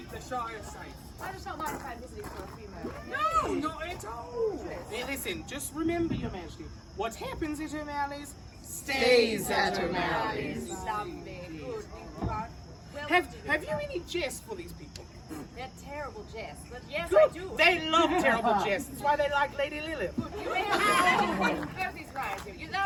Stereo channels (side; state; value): both; identical; correlation 1.00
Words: the Shire safe. I just don't mind if I'm visiting for a few moments. No, not at all. Hey, listen, just remember, Your Majesty, what happens at O'Malley's stays at O'Malley's. Lovely. Good. Well, Have you any jest for these people? they're terrible jests, but yes, Good. I do. They love terrible jests. That's why they like Lady Lilith. You may have both these rides here. You may